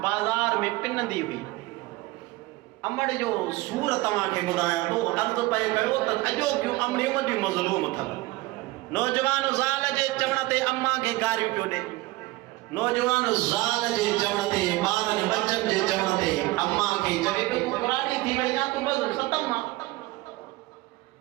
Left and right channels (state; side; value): quieter; left; 20.4 dB